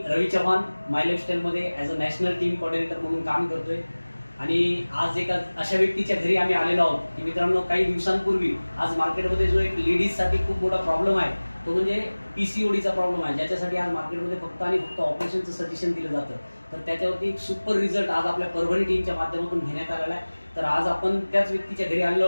रवी चव्हाण माय लाईफस्टाईलमध्ये as a national team coordinator म्हणून काम करतोय. आणि आज एका अशा व्यक्तीच्या घरी आम्ही आलेलो आहोत की मित्रांनो, काही दिवसांपूर्वी आज मार्केटमध्ये जो एक लेडीजसाठी खूप मोठा प्रॉब्लेम आहे तो म्हणजे PCODचा प्रॉब्लेम आहे, ज्याच्यासाठी आज मार्केटमध्ये फक्त आणि फक्त ऑपरेशनचं सजेशन दिलं जातं. तर त्याच्यावरती एक सुपर रिझल्ट आज आपल्या परभणी टीमच्या माध्यमातून घेण्यात आलेला आहे. तर आज आपण त्याच व्यक्तीच्या घरी आलेलो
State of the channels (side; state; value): both; inverted; correlation -1.00